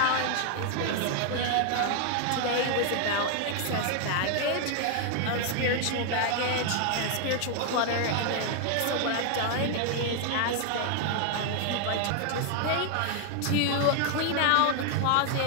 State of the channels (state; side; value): different; both; correlation 0.00